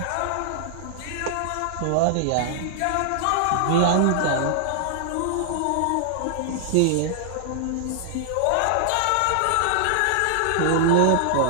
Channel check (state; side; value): different; both; correlation -0.01